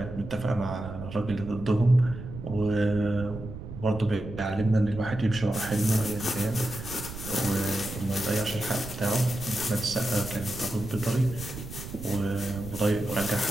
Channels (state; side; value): noise; right; rumble, 10 dB below the sound